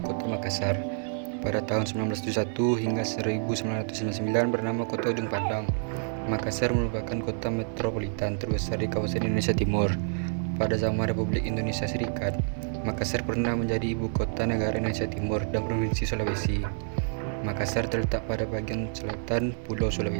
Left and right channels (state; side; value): silent; left; 59 dB below the other